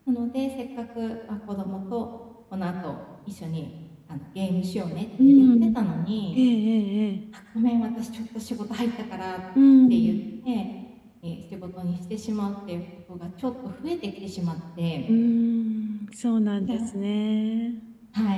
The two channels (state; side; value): identical; both; correlation 1.00